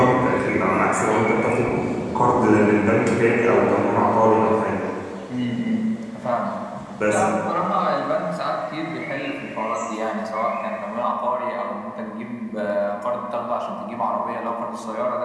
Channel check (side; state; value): both; identical; correlation 1.00